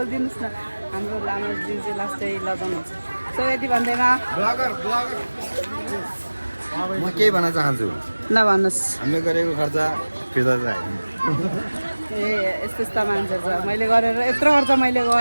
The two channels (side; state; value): both; inverted; correlation -1.00